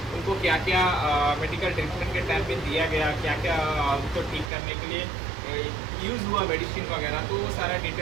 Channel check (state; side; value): drops out; left; at 4.5 s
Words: उनको क्या क्या मेडिकल ट्रीटमेंट के टाइम पे दिया गया, क्या क्या उनको ठीक करने के लिए यूज़ हुआ मेडिसिन वगैरह, तो वो सारा